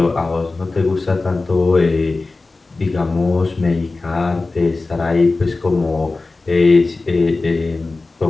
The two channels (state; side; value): quieter; right; 3.5 dB